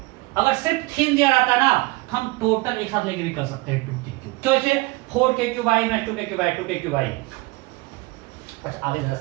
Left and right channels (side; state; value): left; quieter; 23.3 dB